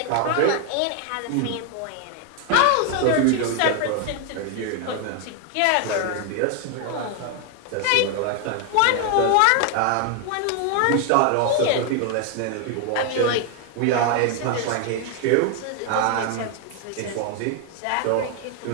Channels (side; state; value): both; different; correlation 0.01